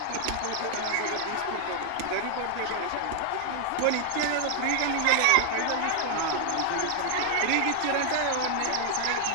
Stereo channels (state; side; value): different; both; correlation 0.00